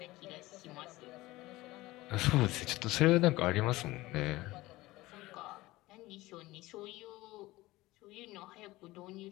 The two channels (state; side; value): quieter; right; 18.9 dB